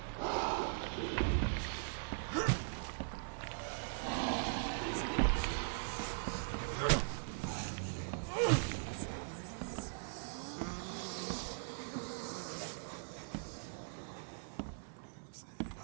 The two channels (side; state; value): left; silent; digital silence